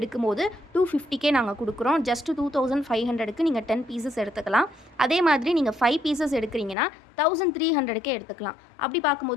250K நாங்கள் கொடுக்குறோம். ஜஸ்ட் 2500க்கு நீங்கள் 10 பீசஸ் எடுத்துக்கலாம். அதே மாதிரி நீங்கள் 5 பீசஸ் எடுக்கிறீங்கன்னா 1300K எடுத்துக்கலாம். அப்படி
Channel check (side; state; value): right; drops out; at 6.8 s